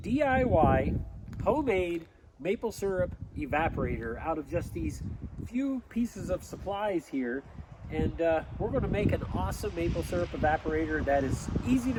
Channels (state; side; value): identical; both; correlation 1.00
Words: DIY homemade maple syrup evaporator out of just these few pieces of supplies here. And we're going to make an awesome maple syrup evaporator that is easy